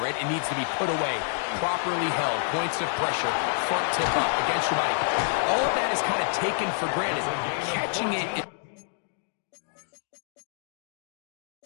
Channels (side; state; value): right; silent; digital silence